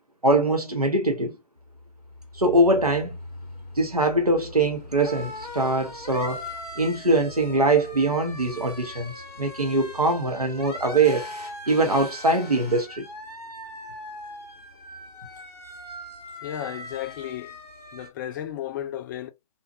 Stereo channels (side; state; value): both; normal; correlation -0.09